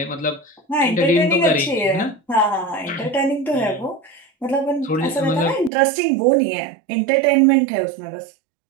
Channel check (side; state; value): left; drops out; at 5.7 s